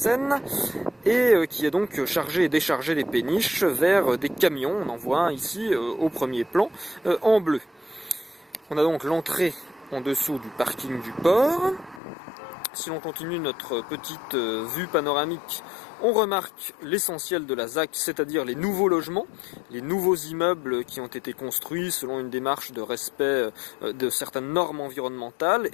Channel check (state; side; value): drops out; right; at 12.0 s